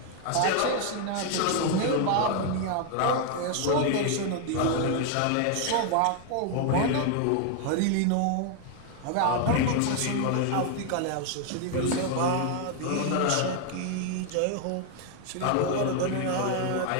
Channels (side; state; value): both; different; correlation 0.00